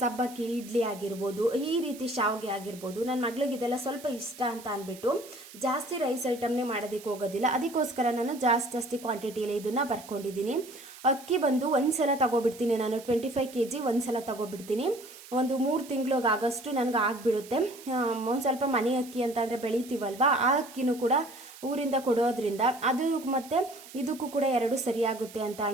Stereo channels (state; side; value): noise; right; hiss, 18 dB below the sound